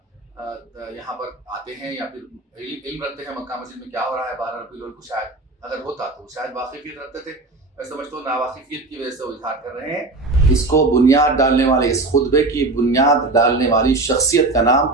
यहाँ पर आते हैं या फिर इल्म रखते हैं मक्का मस्जिद में क्या हो रहा है 12 रबीउल अव्वल को, शायद अगर होता तो शायद वाकिफियत रखते थे। मैं समझता हूँ नावाकिफियत की वजह से वो इजहार कर रहे हैं। इसको बुनियाद डालने वाले, इस खुतबे की बुनियाद डालने वाली शख्सियत का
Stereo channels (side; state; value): left; quieter; 3.2 dB